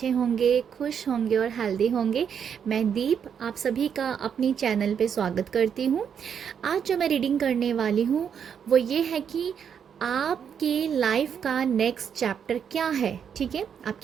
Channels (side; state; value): left; quieter; 7.8 dB